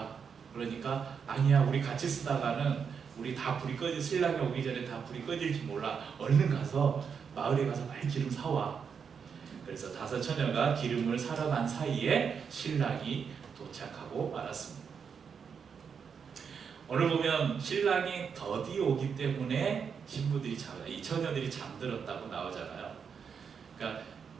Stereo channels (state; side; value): quieter; left; 6.5 dB